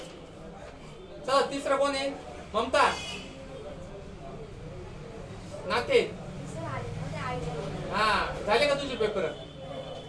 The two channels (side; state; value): both; identical; correlation 1.00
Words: चला तिसरा कोण आहे? ममता नाते. हा झाले का तुझे पेपर?